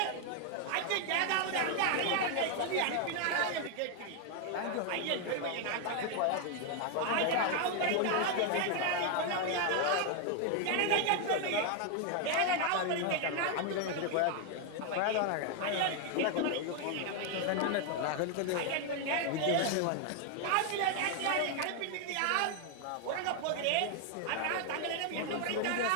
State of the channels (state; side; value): different; both; correlation 0.01